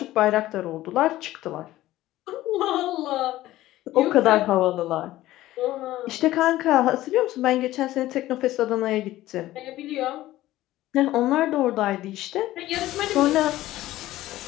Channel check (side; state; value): right; quieter; 15.6 dB